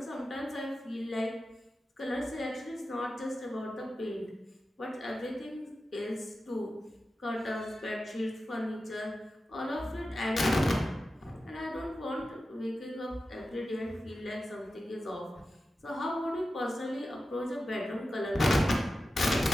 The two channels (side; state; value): both; normal; correlation 0.92